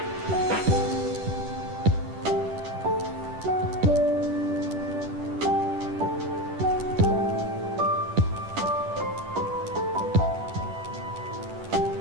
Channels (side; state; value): left; late; 10 ms